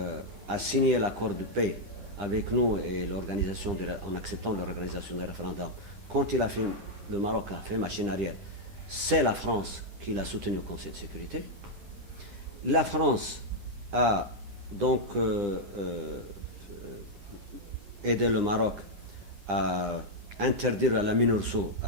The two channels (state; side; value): late; left; 9.9 ms